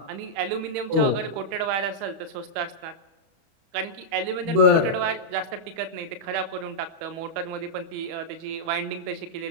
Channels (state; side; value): late; left; 31 ms